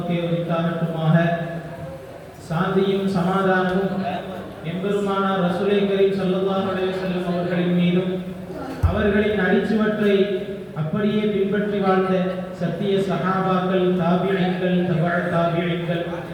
உரித்தாகட்டுமாக. சாந்தியும் சமாதானமும் எம்பெருமானார் ரசூலை கரீம் ஸல்லல்லாஹு அலைஹி வஸல்லம் அவர்களின் மீதும் அவர்களின் அடிச்சுவற்றை அப்படியே பின்பற்றி வாழ்ந்த சத்திய சஹாபாக்கள், தாபிஈன்கள், தபஅ தாபிஈன்கள்,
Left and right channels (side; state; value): both; identical; correlation 1.00